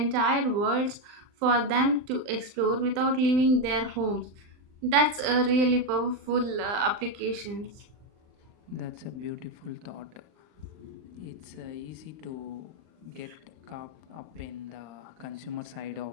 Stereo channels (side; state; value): left; late; 39 ms